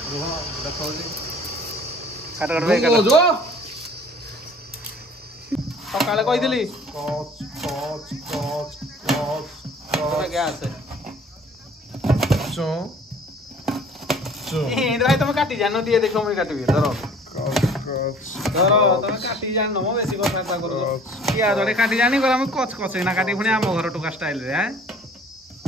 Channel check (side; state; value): both; normal; correlation 0.51